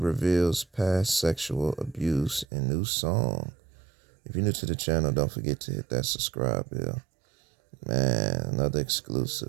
reveals past sexual abuse in new song. If you're new to the channel, don't forget to hit that subscribe bell. Man, another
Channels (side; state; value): left; drops out; at 2.5 s